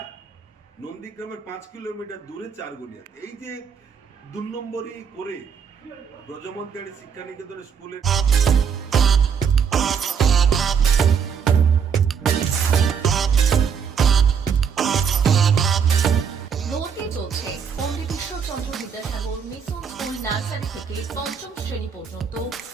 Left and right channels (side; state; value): left; quieter; 6.9 dB